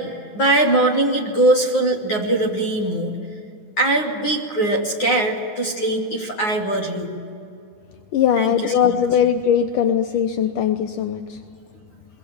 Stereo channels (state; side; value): late; right; 9.6 ms